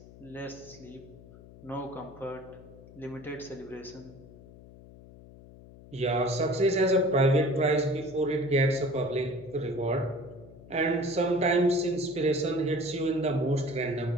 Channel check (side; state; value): left; noise; hum, 20 dB below the sound